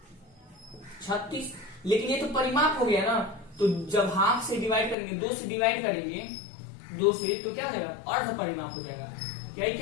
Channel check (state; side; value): drops out; right; at 5.0 s